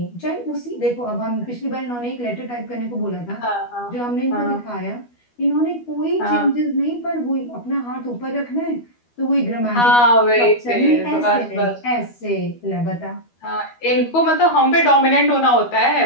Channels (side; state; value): right; late; 12 ms